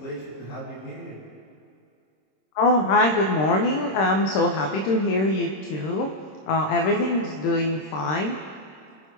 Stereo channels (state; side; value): late; right; 26 ms